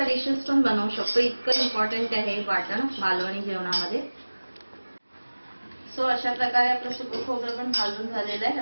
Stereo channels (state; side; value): inverted; both; correlation -1.00